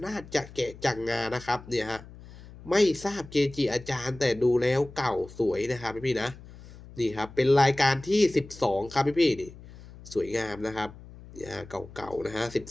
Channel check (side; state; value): left; noise; hum, 18 dB below the sound